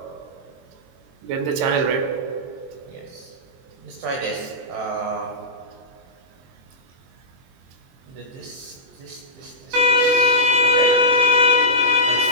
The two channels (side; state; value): left; late; 23 ms